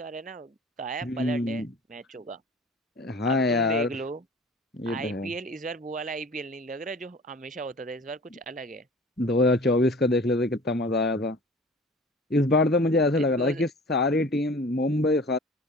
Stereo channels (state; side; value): normal; both; correlation 0.43